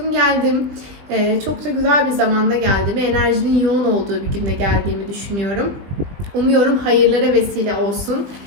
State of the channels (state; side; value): late; left; 20 ms